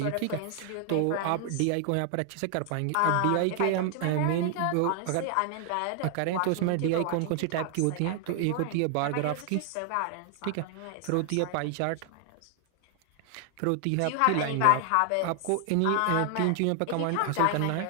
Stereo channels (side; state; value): both; different; correlation 0.00